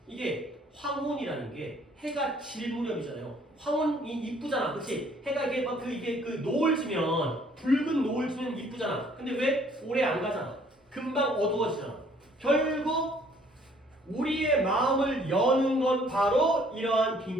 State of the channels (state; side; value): normal; both; correlation 0.60